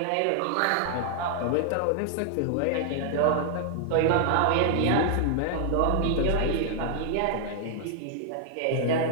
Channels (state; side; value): different; both; correlation -0.01